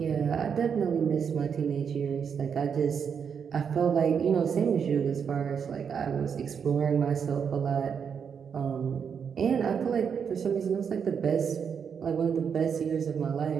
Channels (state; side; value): quieter; left; 6.9 dB